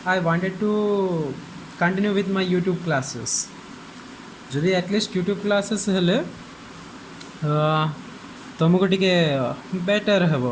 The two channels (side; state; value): both; identical; correlation 1.00